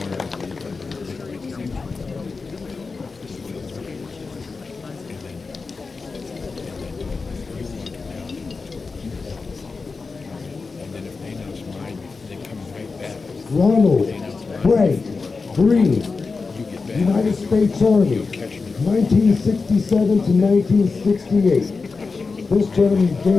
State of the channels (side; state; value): right; quieter; 4.4 dB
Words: Ronald Frank Green, United States Army, 1967 to 1968. This gentleman